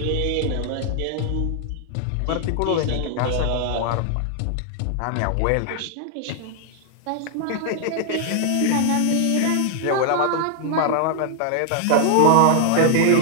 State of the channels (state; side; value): different; both; correlation 0.00